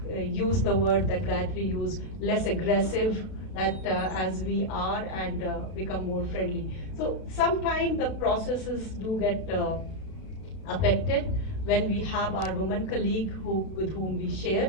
use the word that Gayatri used, less aggressive as we are, and become more friendly. So sometimes the processes do get affected when we have our women colleague with whom we share.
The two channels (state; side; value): late; right; 32 ms